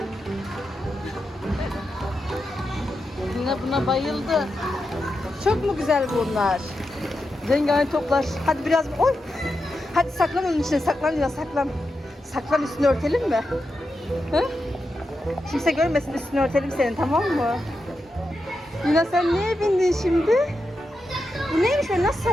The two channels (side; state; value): both; normal; correlation 0.88